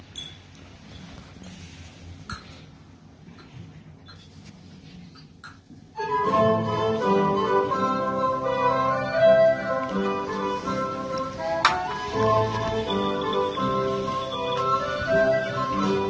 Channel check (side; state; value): both; identical; correlation 1.00